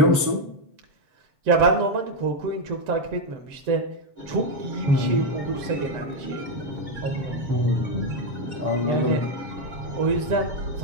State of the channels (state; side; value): late; left; 7.1 ms